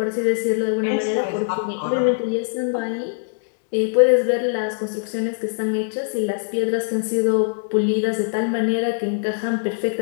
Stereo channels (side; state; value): right; silent; digital silence